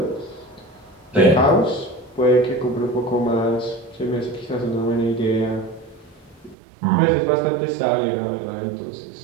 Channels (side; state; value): left; drops out; at 6.6 s